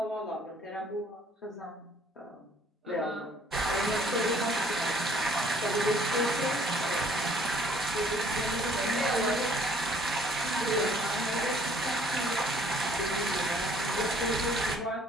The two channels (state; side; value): normal; both; correlation 0.60